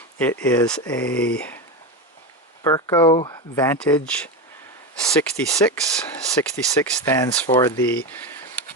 It is a Berco Vantage 66. 66 stands for the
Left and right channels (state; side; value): normal; both; correlation 0.18